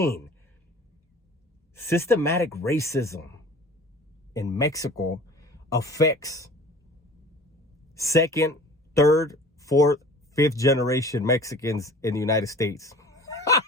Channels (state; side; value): normal; both; correlation 0.43